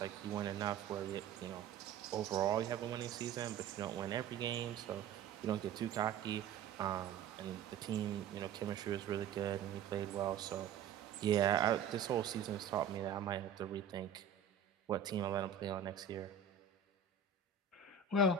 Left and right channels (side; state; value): left; quieter; 7.0 dB